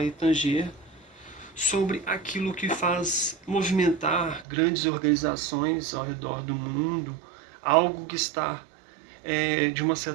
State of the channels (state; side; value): drops out; left; at 4.5 s